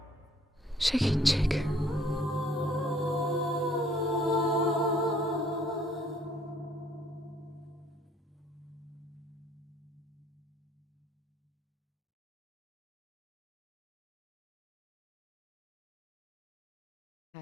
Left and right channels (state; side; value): normal; both; correlation 0.60